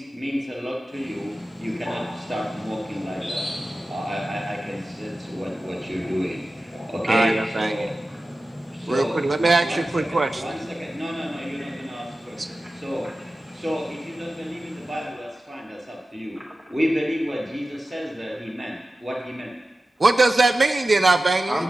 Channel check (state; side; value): normal; both; correlation 0.95